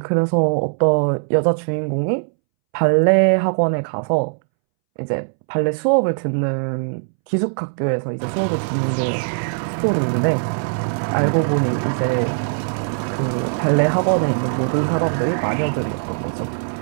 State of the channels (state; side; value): silent; left; 64 dB below the other